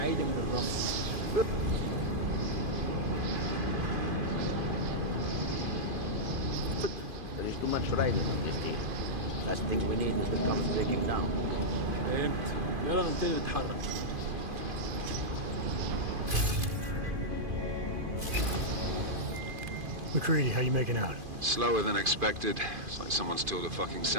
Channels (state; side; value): late; left; 2.5 ms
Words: من الرمل. There is too much riding on this deal. Last thing we need is the comms breaking down. فهمت. يلا نبتدي نتحرك. McCready, how you making out? Slower than expected. It's like someone's tilled a fucking